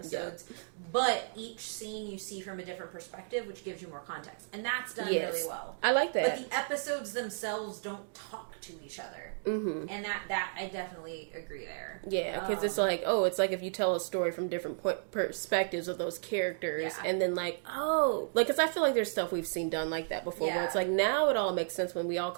but each scene you see from a different perspective, which gives you more context. And that's done really well. I like that. But the episodes themselves don't talk to each other. And that I definitely agree there. Yeah, because it's like, it's like if you tell a story from different perspectives of those characters, and then like, like, because I feel like there's stuff we've seen done like that before, where it's like, now it all makes sense when we all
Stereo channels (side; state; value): left; silent; digital silence